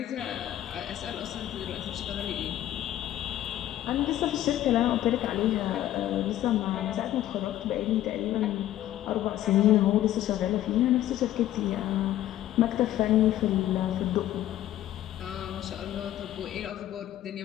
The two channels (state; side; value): quieter; right; 13.0 dB